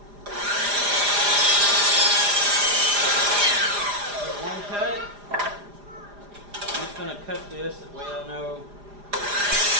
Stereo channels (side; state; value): left; late; 4.9 ms